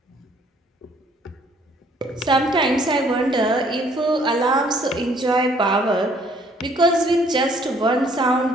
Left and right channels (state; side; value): normal; both; correlation 0.61